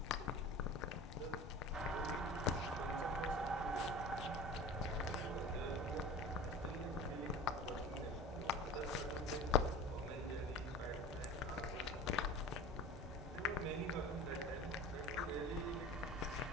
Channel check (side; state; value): both; normal; correlation 0.37